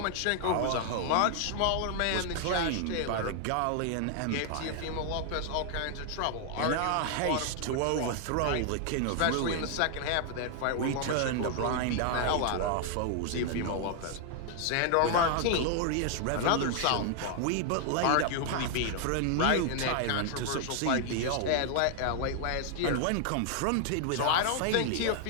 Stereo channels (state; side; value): different; both; correlation 0.00